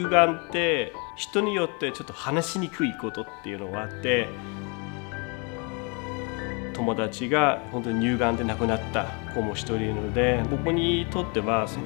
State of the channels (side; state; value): right; quieter; 33.7 dB